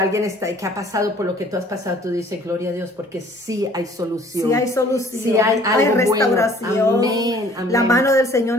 que ha pasado por lo que tú has pasado, tú dices, gloria a Dios, porque sí hay solución. Sí hay solución. Sí hay restauración. Bueno. Amén, amén. La mano del Señor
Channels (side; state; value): both; normal; correlation 0.54